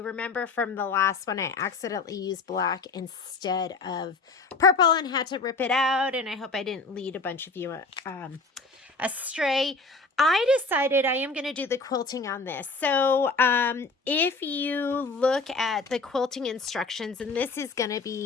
remember from the last one, I accidentally used black instead of purple and had to rip it out, and I hope I didn't lead a bunch of you astray. I decided I am going to do the quilting on this. So if you look at the quilting instructions, and this is going to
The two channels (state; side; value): quieter; right; 3.8 dB